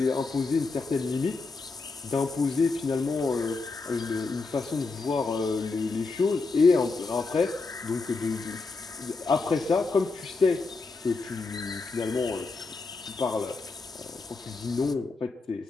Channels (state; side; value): quieter; right; 4.0 dB